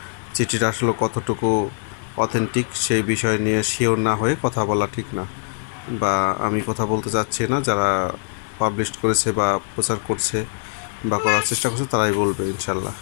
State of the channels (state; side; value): silent; right; 64 dB below the other